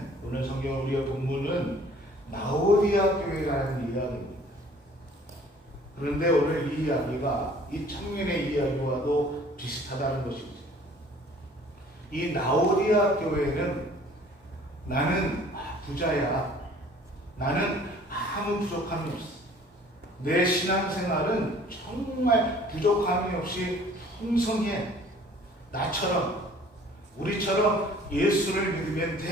오늘 성경 우리의 본문은 나오디아 교회라는 이야기입니다. 그런데 오늘 이 이야기가 이 청년의 이야기와도 비슷하다는 것이죠. 이 나오디아 교회는 나는 부자야. 나는 아무 부족함이 없어. 내 신앙생활은 정말 부족함이 없이 풍성해. 나처럼, 우리처럼 예수를 믿으면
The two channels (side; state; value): both; normal; correlation 0.52